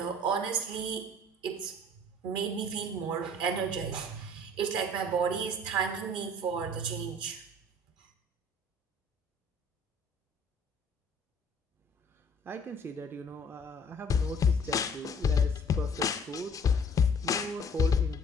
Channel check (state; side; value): normal; both; correlation 0.52